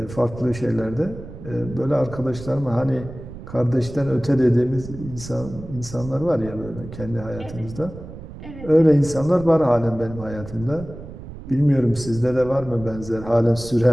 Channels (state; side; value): noise; right; rumble, 13 dB below the sound